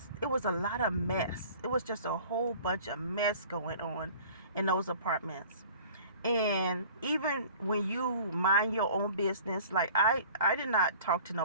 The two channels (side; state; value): both; inverted; correlation -0.46